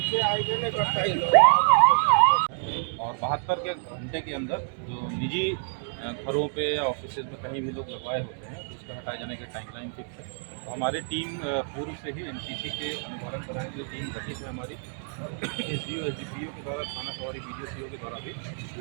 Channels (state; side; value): silent; left; 59 dB below the other